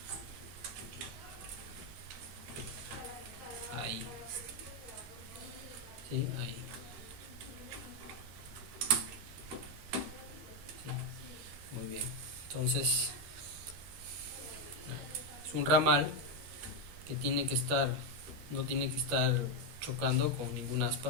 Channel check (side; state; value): left; late; 12 ms